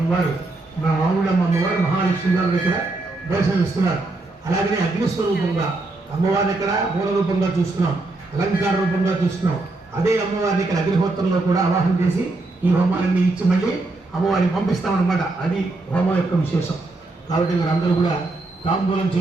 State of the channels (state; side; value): quieter; left; 3.1 dB